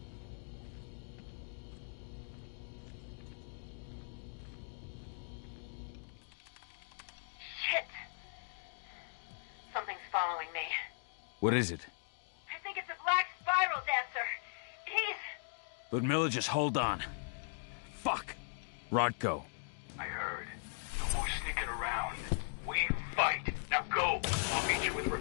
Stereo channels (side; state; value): right; silent; digital silence